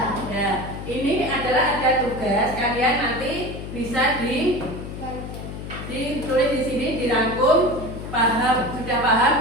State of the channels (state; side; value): noise; left; hum, 9 dB below the sound